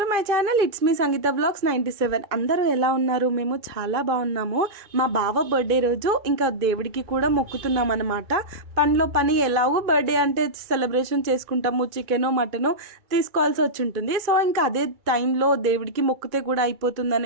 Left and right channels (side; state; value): left; late; 2.3 ms